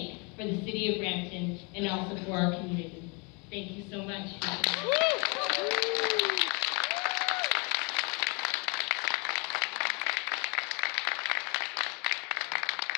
for the city of Brampton and also for our community. Thank you so much.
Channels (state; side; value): quieter; right; 31.4 dB